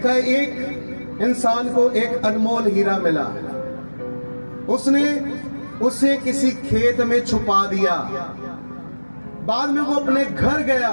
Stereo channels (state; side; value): inverted; both; correlation -1.00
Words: है, एक इंसान को एक अनमोल हीरा मिला, उसने उसे किसी खेत में छुपा दिया। बाद में वो अपने घर गया